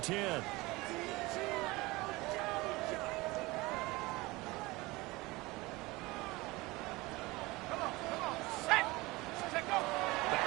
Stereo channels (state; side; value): quieter; left; 21.8 dB